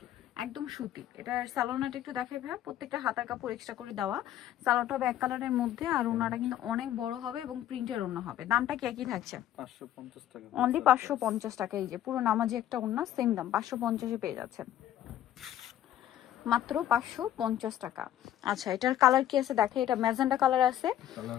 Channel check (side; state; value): right; quieter; 11.9 dB